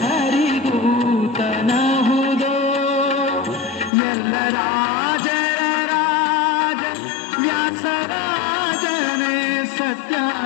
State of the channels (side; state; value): right; drops out; at 3.9 s